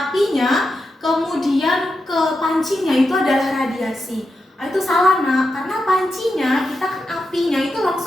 kemudian ke pancinya itu adalah radiasi. Itu salah nak, karena pancinya kita kan apinya itu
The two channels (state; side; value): normal; both; correlation 0.88